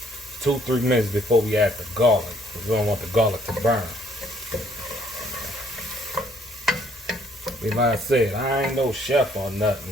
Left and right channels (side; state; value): both; normal; correlation 0.64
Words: 2-3 minutes before we add the garlic. We don't want the garlic to burn. Like I said, I ain't no chef or